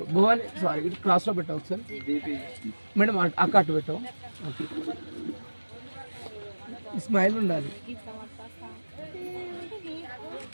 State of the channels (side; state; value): both; inverted; correlation -1.00